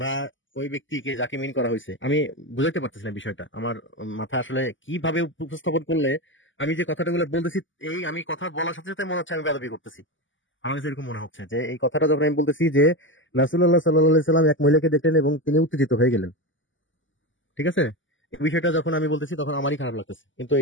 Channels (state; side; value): late; right; 0.56 ms